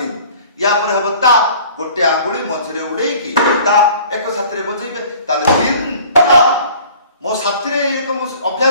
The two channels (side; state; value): both; inverted; correlation -0.49